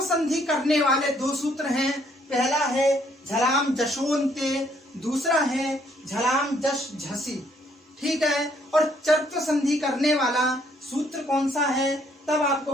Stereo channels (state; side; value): normal; both; correlation 0.67